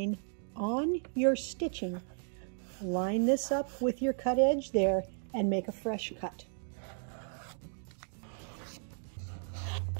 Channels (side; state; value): left; silent; 55 dB below the other